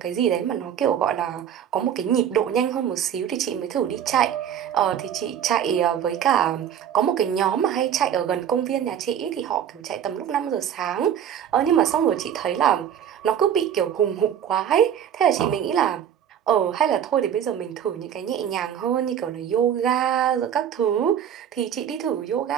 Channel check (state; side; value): quieter; left; 9.3 dB